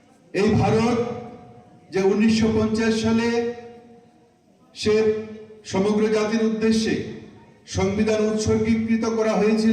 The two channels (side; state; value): both; identical; correlation 1.00